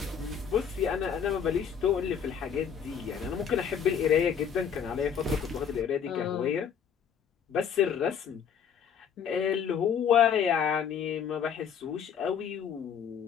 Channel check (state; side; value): quieter; right; 7.6 dB